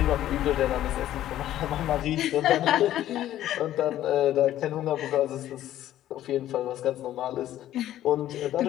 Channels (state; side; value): quieter; right; 12.8 dB